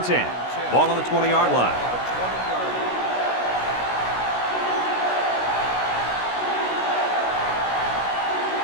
10. Ball on the 20-yard line.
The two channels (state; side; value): late; right; 16 ms